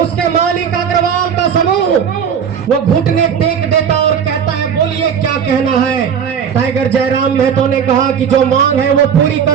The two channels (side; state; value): left; quieter; 7.6 dB